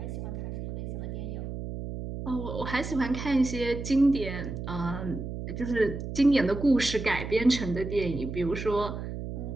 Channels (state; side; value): noise; right; hum, 6 dB below the sound